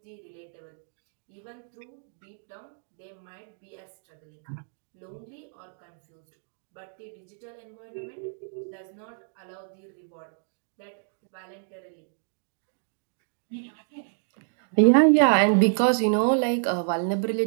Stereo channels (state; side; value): silent; left; digital silence